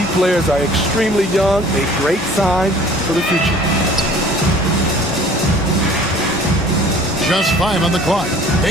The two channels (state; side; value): normal; both; correlation 0.50